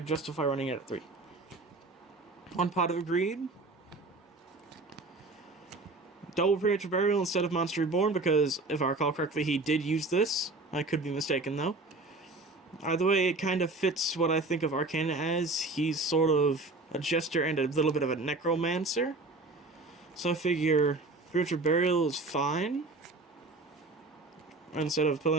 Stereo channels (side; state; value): left; quieter; 3.3 dB